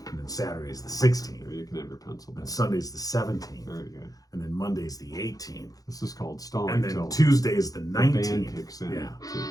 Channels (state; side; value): late; right; 0.17 ms